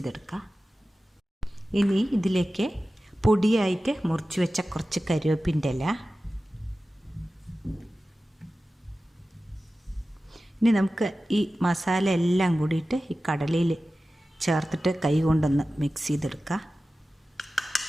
ഇനി ഇതിലേക്ക് പൊടിയായിട്ട് മുറിച്ച് വെച്ച കുറച്ച് കരിവേപ്പിൻ്റെ ഇല, ഇനി നമുക്ക് ഈ മസാല എല്ലാം കൂടിയിട്ട് ഈ കടലയിൽ ചേർത്തിട്ട് കൈ കൊണ്ടൊന്ന് മിക്സ് ചെയ്തെടുക്കാം.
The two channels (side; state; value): both; normal; correlation 0.95